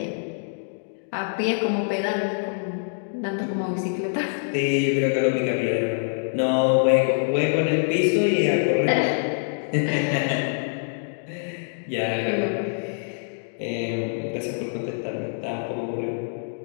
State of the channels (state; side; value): silent; right; digital silence